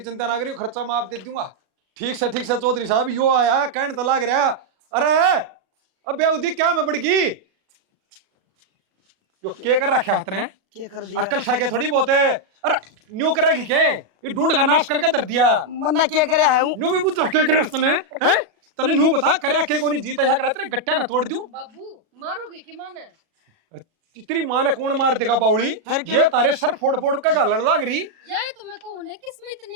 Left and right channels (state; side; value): late; left; 37 ms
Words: चिंता ना करियो, खर्चा मैं आप दे दूंगा। ठीक से चौधरी साहब, यो आया कहने तो लाग रहा। अरे अब बेउदी क्या मैं बढ़गी, जो के कर रखा हाथ ने, क्या कर दिया अक्ल साके थोड़ी बहुत है। अरे न्यू करेगी के, ये ढूंढ का नाश करके धर दिया। मन्ना क्या करे है हूँ न्यू भी बुझ के करे तने हैं, तने न्यू बता करे के कोनी जीता है करे तेरे गट्टा ना तोड़ दूं। बाबू मारोगे कि माने? तेरी मां ने कौन मार देगा बावली, ये तारे सर फोड़ फोड़ के गालन लाग रही। यार तो मैं कहूं ना किसमें